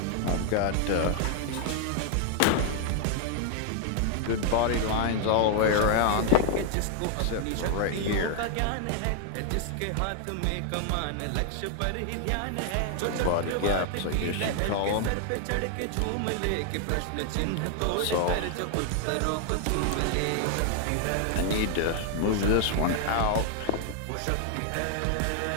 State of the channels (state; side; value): different; both; correlation 0.00